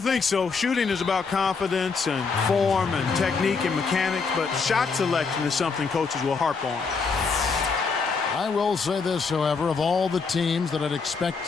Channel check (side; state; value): right; quieter; 4.9 dB